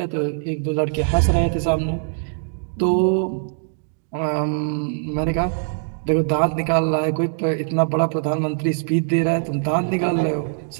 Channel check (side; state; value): left; silent; digital silence